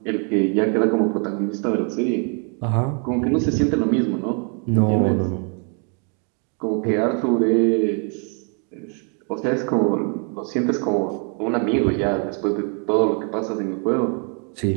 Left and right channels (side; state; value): left; quieter; 40.0 dB